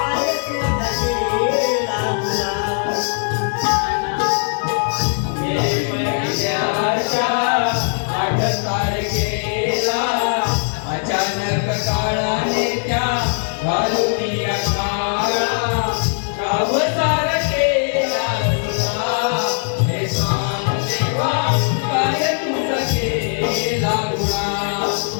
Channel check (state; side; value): silent; right; 66 dB below the other